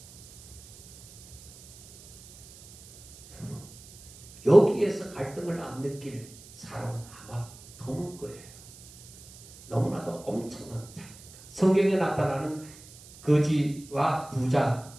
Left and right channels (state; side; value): noise; right; hiss, 20 dB below the sound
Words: 여기에서 갈등을 안 느낄 사람은 아마 드물 거예요. 너무나도 엄청난 차이입니다. 성경에 나타나는 거지와 부자의